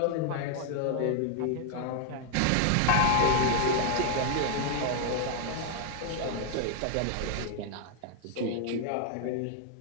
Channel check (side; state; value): both; different; correlation 0.00